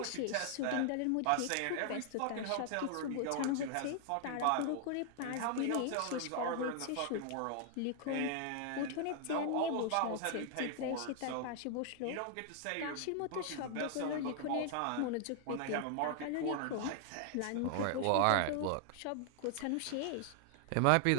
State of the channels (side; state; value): both; different; correlation 0.00